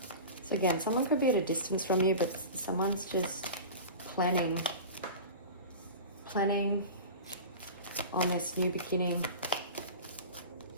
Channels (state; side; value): inverted; both; correlation -0.32